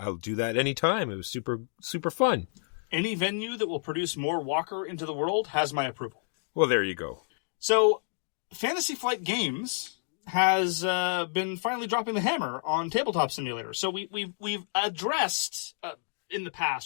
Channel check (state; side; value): silent; right; digital silence